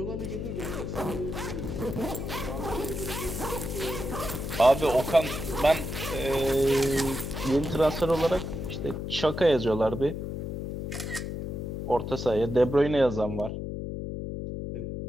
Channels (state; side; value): noise; left; hum, 5 dB below the sound